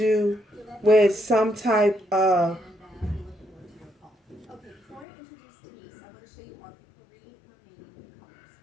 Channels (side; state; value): right; drops out; at 5.1 s